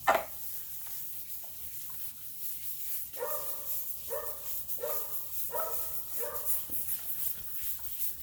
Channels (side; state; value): both; identical; correlation 1.00